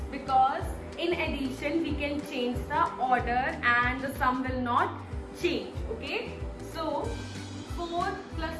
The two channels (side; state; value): both; identical; correlation 1.00